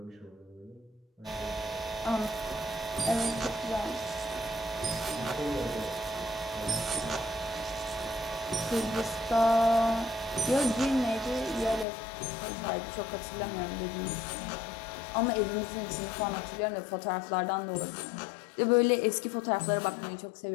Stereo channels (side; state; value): right; drops out; at 11.9 s